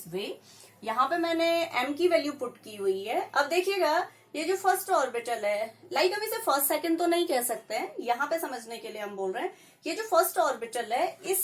way. यहाँ पे मैंने m की value put की हुई है। अब देखिएगा ये जो फर्स्ट ऑर्बिटल है, लाइक हम इसे फर्स्ट सेकंड तो नहीं कह सकते हैं, यहाँ पे समझने के लिए हम बोल रहे हैं ये जो फर्स्ट ऑर्बिटल है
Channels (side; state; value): both; identical; correlation 1.00